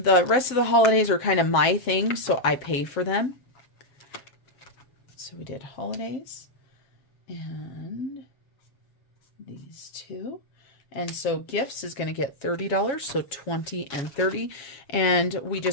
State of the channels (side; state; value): right; late; 7.5 ms